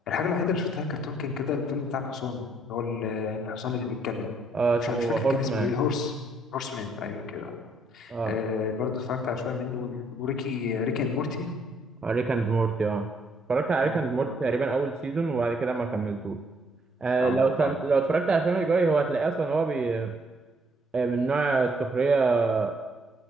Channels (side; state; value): both; normal; correlation 0.69